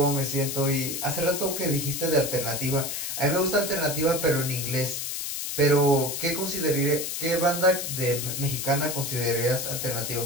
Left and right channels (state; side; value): noise; left; hiss, 4 dB below the sound